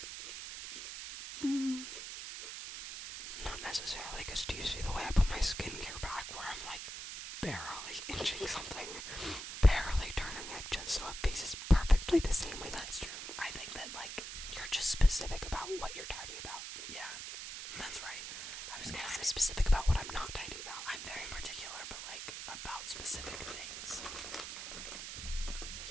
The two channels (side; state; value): right; noise; hiss, 8 dB below the sound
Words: Not necessarily, because do you see the way I put my skincare back where I'm like barely inching something, barely turning it just so it faces perfectly the same way? That's true. I think that, like, you're just specific about what you're tidy about. yeah, that's right. I was And gonna I'm say, specific about what I'm not tidy about. I'm very particular, but, like, about specific things.